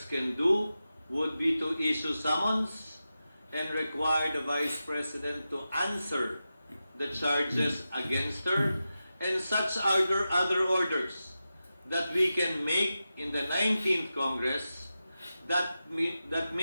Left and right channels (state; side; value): inverted; both; correlation -0.92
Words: can do would be to issue summons and require the Vice President to answer the charges against her and such other orders that we can make in the 19th Congress that